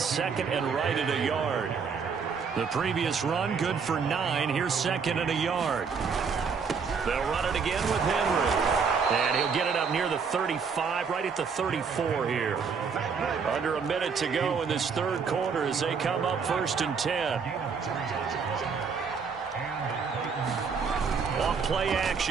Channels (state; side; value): quieter; left; 5.8 dB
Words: and right at a yard. The previous run good for 9. Here's second and a yard. They'll run it again with Henry. And he'll get it up near the 35, right at the 34 here. Under a minute to go in this third quarter as they come up 1st and 10. Off play